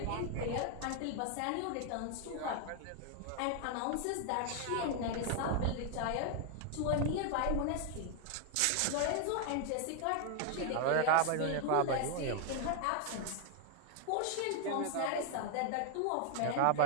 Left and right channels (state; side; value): different; both; correlation 0.00